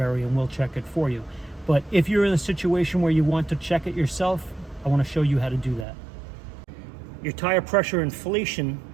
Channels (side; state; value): left; drops out; at 5.9 s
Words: and we'll check it for you. But if you're in a situation where you want to check it yourself, I want to show you how to do that. Your tire pressure inflation